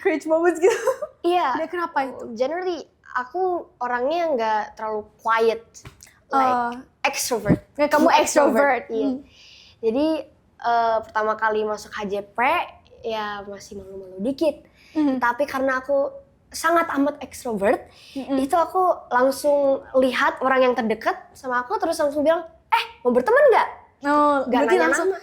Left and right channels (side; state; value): both; identical; correlation 1.00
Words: moments gitu? Iya. Dia kenapa itu? Generally, aku orangnya nggak terlalu quiet, like extrovert. Kamu extrovert. Iya. Jadi pertama kali masuk HJP ya masih malu-malu dikit. Tapi karena aku sangat amat extrovert, itu aku langsung lihat orang yang terdekat sama aku, terus langsung bilang, mau berteman nggak? Oh, Nggak berarti nanya